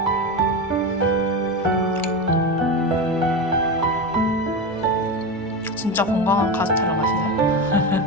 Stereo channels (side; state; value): both; normal; correlation 0.20